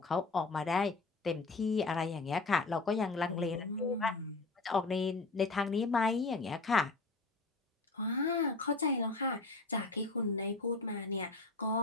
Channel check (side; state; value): right; quieter; 3.6 dB